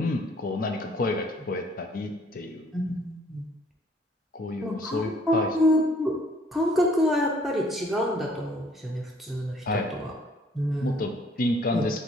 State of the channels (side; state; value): both; normal; correlation 0.60